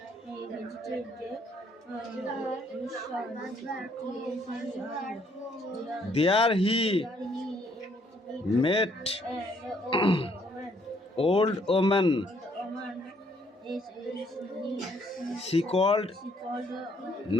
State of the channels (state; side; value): normal; both; correlation 0.67